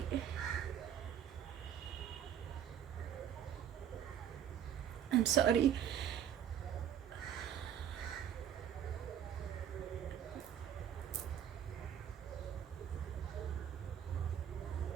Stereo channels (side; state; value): left; quieter; 9.6 dB